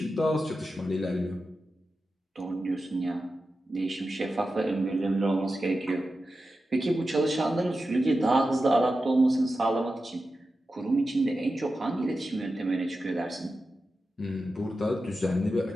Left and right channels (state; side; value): normal; both; correlation 0.92